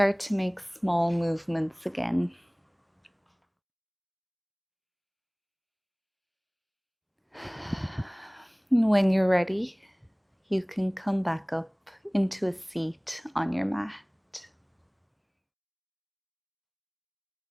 to make small movements again. And when you're ready, you can come back up into a seat on your mat.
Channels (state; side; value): identical; both; correlation 1.00